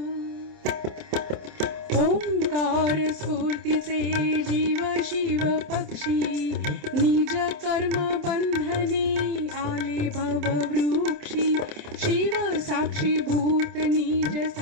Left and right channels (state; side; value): late; left; 27 ms